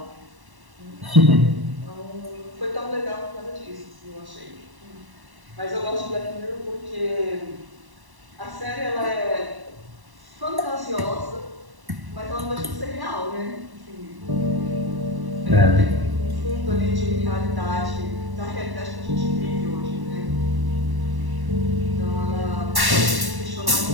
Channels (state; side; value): late; left; 1.1 ms